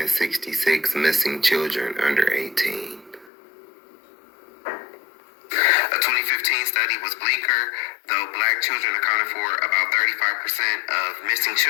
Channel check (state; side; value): drops out; right; at 3.3 s